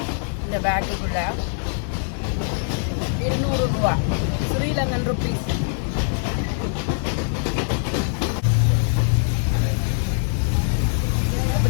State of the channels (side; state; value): right; silent; 64 dB below the other